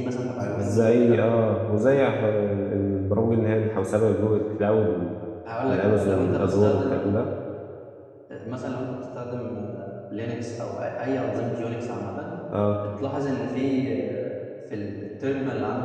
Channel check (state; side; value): identical; both; correlation 1.00